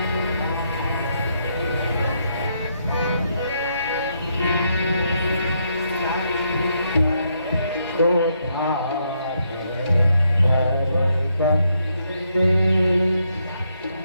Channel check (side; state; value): both; inverted; correlation -0.77